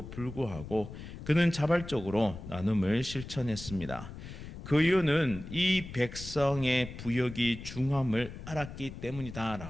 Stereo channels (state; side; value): noise; left; rumble, 12 dB below the sound